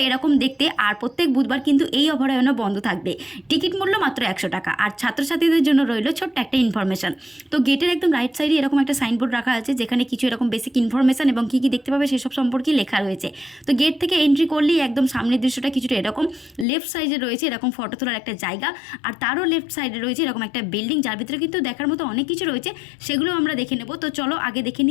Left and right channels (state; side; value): drops out; right; at 16.7 s